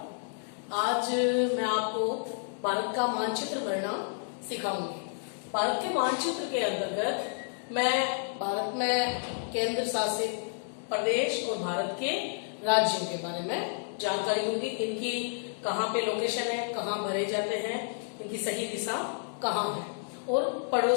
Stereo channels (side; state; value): right; silent; digital silence